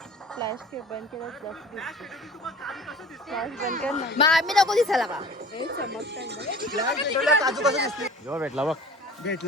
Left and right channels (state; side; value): normal; both; correlation 0.43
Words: फ्लॅश बंद केलं फ्लॅश बंद कर ना. मग आम्ही नको दिसायला का? हे चमकतात. काजू कसं दिसते जेव्हा भेटला बघ